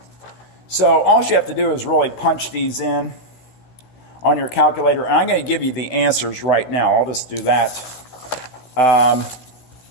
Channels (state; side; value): late; right; 16 ms